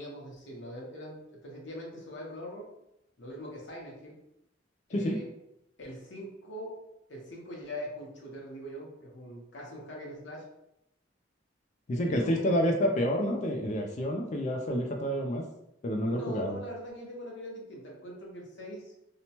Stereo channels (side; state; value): both; normal; correlation 0.42